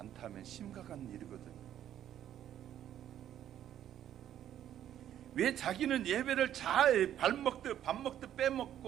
심각한 일이거든요. 왜 자기는 예배를 잘 밥 먹듯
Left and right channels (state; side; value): quieter; left; 11.0 dB